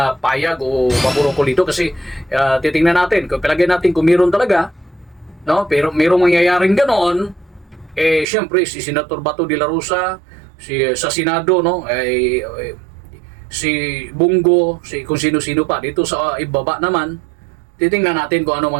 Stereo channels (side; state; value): left; drops out; at 8.2 s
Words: payag o paboroko dito kasi titingnan natin, kung palagay natin kung meron talaga, no? Pero merong mangyayaring ganoon, siyempre si Senator Bato de la Rosa, sa Senado, no? Si Bungo, kung sino-sino pa dito sa ibaba naman, titingnan natin kung ano